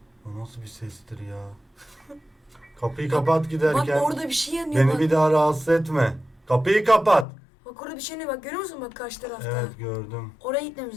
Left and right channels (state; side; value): drops out; right; at 7.2 s